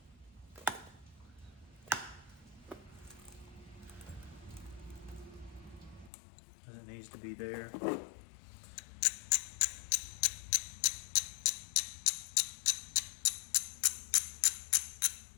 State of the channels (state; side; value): drops out; right; at 6.1 s